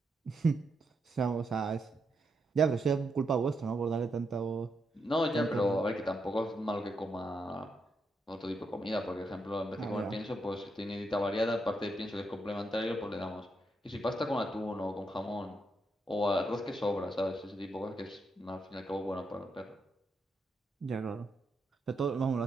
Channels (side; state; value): both; normal; correlation 0.81